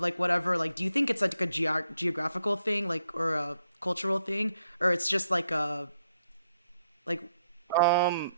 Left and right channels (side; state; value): both; inverted; correlation -0.77